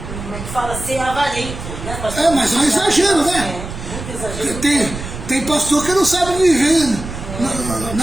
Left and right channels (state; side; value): noise; right; rumble, 9 dB below the sound